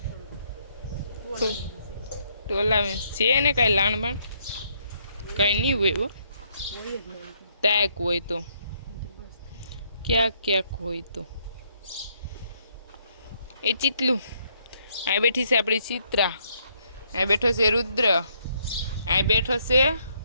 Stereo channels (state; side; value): inverted; both; correlation -0.71